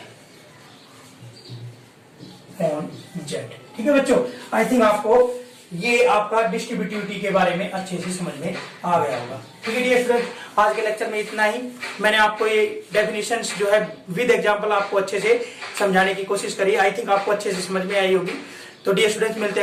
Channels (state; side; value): identical; both; correlation 1.00